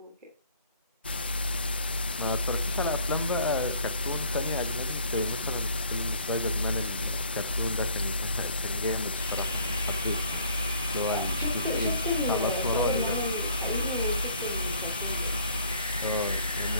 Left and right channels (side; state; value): both; inverted; correlation -0.57